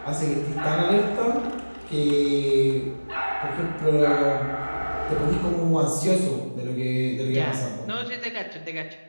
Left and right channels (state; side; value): inverted; both; correlation -1.00